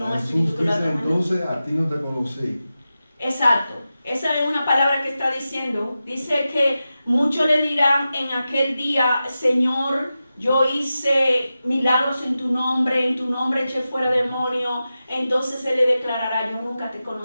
un Jesús espíritu que lo dice, atrajo. entonces a ti no te conocí. Exacto. Esa es una palabra que está diciendo. Dice que muchos le dirán en aquel día, Señor, yo hice milagros en tu nombre eché fuera demonios. Entonces Él le declarará, yo nunca te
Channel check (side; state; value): both; inverted; correlation -0.93